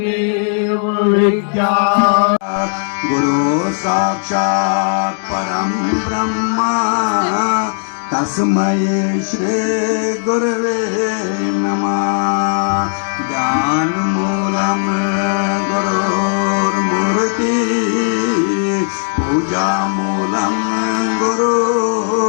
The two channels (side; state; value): right; silent; digital silence